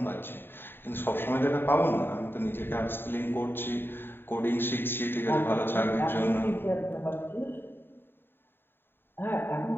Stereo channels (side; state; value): right; late; 0.10 ms